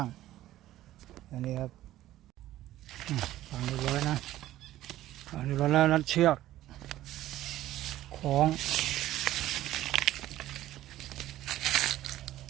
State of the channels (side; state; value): left; quieter; 14.3 dB